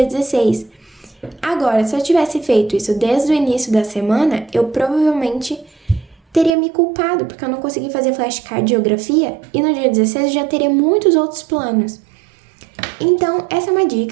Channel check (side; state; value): left; drops out; at 6.5 s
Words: 16. Agora, se eu tivesse feito isso desde o início da semana, eu provavelmente teria me culpado, porque eu não consegui fazer flashcard de geografia, e no dia 16 eu já teria muitos outros planos. Então, essa é uma